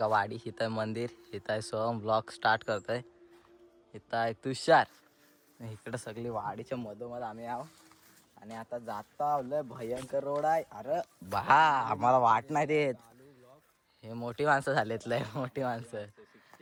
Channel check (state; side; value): identical; both; correlation 1.00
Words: वाडी, इथं आहे मंदिर, इथं आहे सोम ब्लॉग स्टार्ट करतोय, इथं आहे तुषार, इकडं सगळी वाडीच्या मधोमध आम्ही आहो. आणि आता जाता लय भयंकर रोड आहे. अरे बा, आम्हाला वाट नाही देत. हे मोठी माणसं झालेत, लय मोठी माणसं.